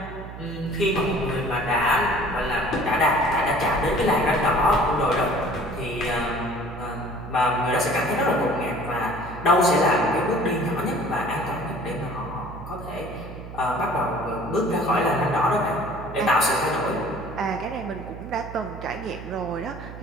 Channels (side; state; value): right; noise; hum, 12 dB below the sound